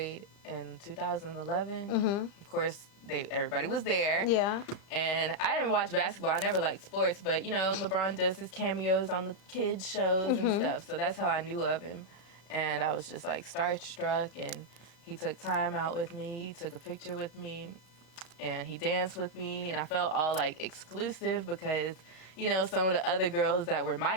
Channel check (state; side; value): late; right; 35 ms